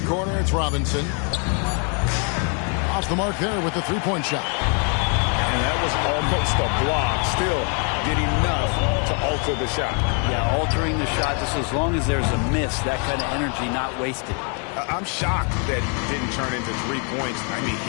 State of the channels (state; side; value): quieter; right; 38.8 dB